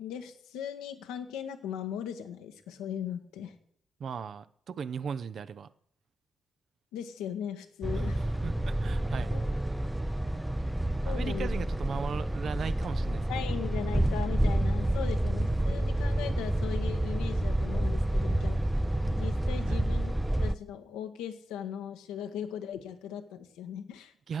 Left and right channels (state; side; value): normal; both; correlation 0.91